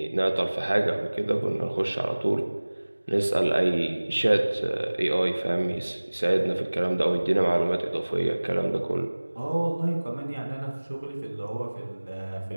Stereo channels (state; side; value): inverted; both; correlation -1.00